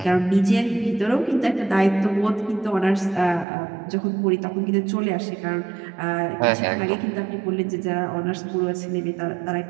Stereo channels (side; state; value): left; drops out; at 3.5 s